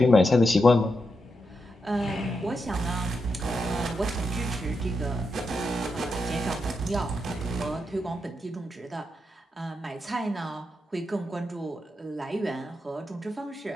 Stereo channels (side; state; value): both; normal; correlation 0.85